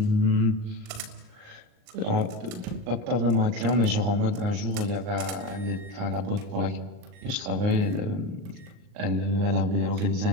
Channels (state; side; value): late; left; 39 ms